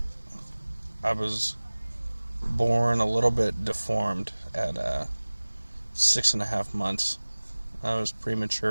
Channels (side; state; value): both; inverted; correlation -1.00